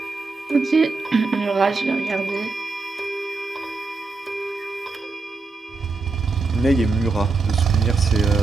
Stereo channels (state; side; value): quieter; left; 3.9 dB